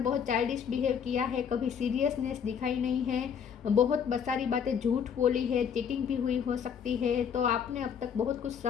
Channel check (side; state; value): right; quieter; 7.5 dB